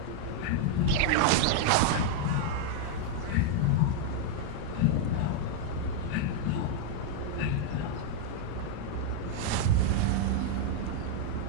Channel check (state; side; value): different; both; correlation 0.00